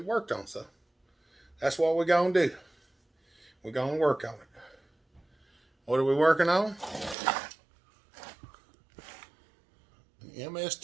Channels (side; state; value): left; drops out; at 7.2 s